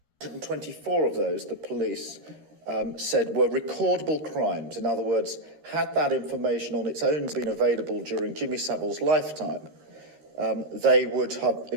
And 24 of those, the police said, were recordable crimes. In other words, had that information on its own been available during Jimmy Savile's lifetime, they would have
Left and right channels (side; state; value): left; late; 13 ms